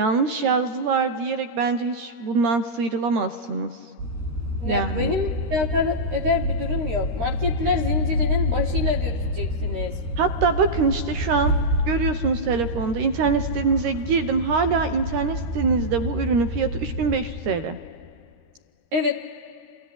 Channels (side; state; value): left; late; 13 ms